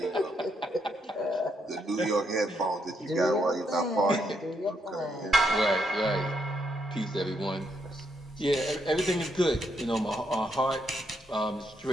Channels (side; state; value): both; normal; correlation 0.77